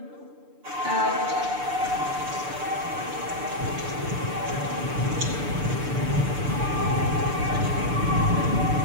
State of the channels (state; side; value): late; left; 6.8 ms